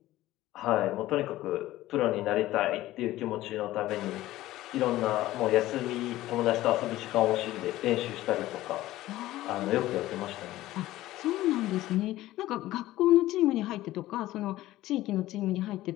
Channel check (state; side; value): quieter; right; 15.9 dB